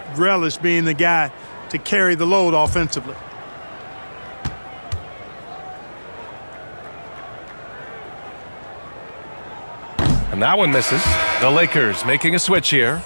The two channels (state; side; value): inverted; both; correlation -1.00